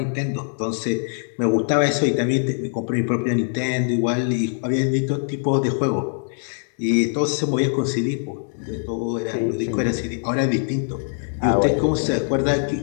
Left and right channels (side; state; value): right; silent; 64 dB below the other